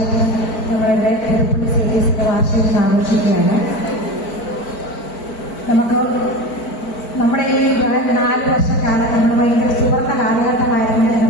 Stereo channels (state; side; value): late; right; 4.5 ms